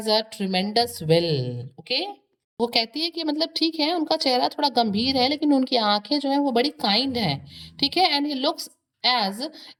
a tremendous will, okay. वो कहती है कि मतलब ठीक है उनका चेहरा थोड़ा गंभीर है लेकिन उनकी आंखें जो हैं वो बड़ी काइंड हैं, ठीक है। And he looks as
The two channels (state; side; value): identical; both; correlation 1.00